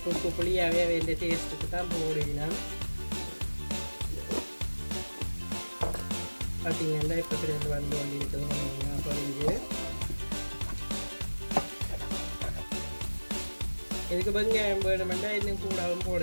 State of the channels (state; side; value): inverted; both; correlation -1.00